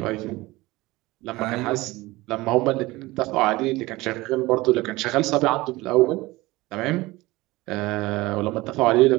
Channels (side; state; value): left; quieter; 20.3 dB